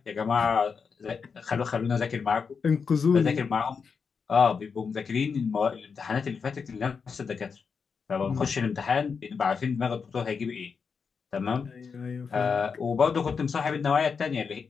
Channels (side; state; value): right; quieter; 5.7 dB